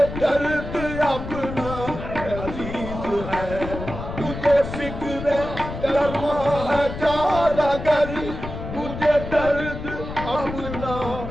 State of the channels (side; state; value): left; noise; rumble, 8 dB below the sound